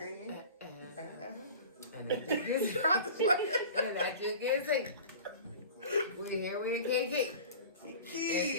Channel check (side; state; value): both; inverted; correlation -0.39